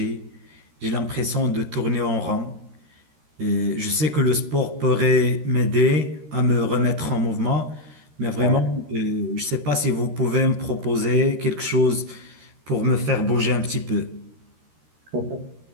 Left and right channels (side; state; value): left; late; 13 ms